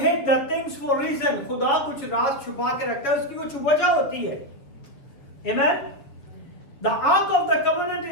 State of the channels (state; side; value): late; right; 6.9 ms